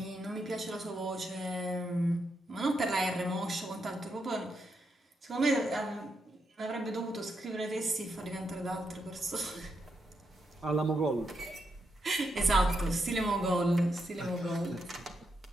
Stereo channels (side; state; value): both; normal; correlation 0.82